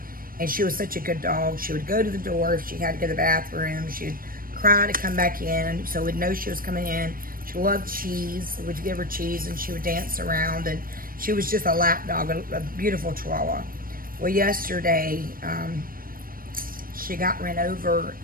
and she was such a good dog. She would go to the door if she had to go to the bathroom. She would cry to come back in, so we'd know she was coming in. She loved cheese. We'd give her cheese, and she would dance around, and she was just a lap dog, a beautiful Chihuahua. Well, yesterday, she got ran over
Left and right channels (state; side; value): late; left; 0.41 ms